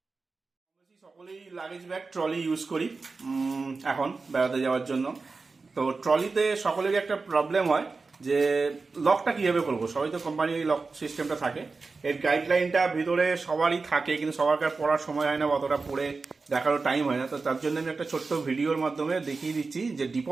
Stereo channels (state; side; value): quieter; left; 4.1 dB